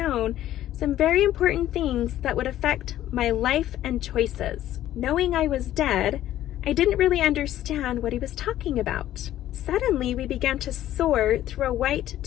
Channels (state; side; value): quieter; right; 13.0 dB